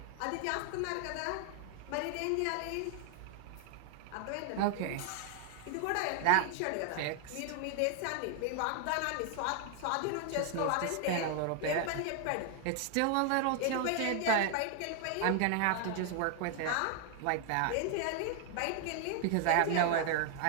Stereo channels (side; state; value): both; different; correlation 0.00